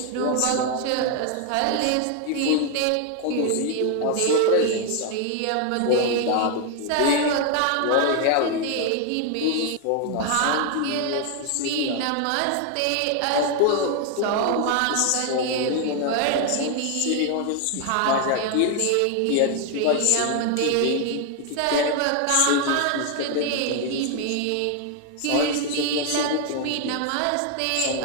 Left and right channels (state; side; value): different; both; correlation 0.01